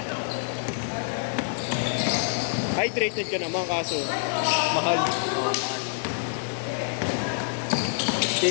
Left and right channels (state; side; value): silent; right; digital silence